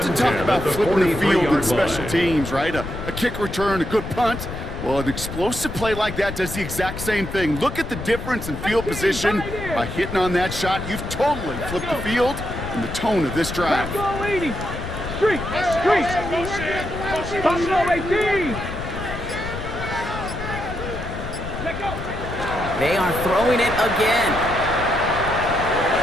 talk about flipping the field in special teams, right? A kick return, a good punt. Well, an explosive play like that does the exact same thing. Look at the difference in field position. By hitting on that shot, you've totally flipped the field and the tone of this drive. Street, Buffalo 18. They are throwing it again.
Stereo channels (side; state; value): left; noise; rumble, 8 dB below the sound